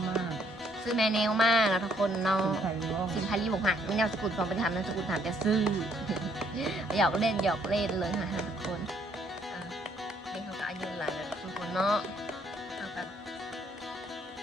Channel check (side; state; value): both; normal; correlation 0.67